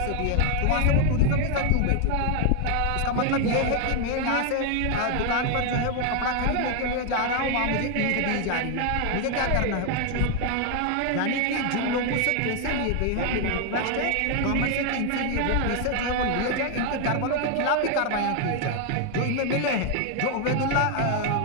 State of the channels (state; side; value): different; both; correlation 0.00